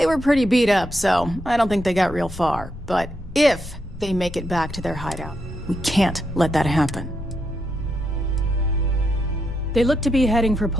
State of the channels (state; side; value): normal; both; correlation 0.82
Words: were pretty beat up, so I don't think they got real far. But if they make it back to their hideout, we can't let that happen. They look to be heading for